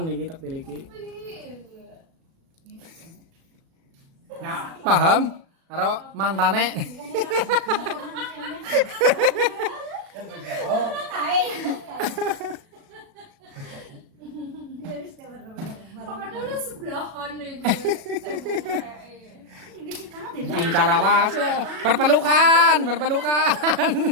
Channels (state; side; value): late; left; 37 ms